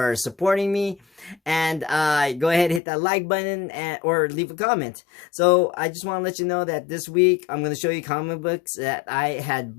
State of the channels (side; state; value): right; drops out; at 2.8 s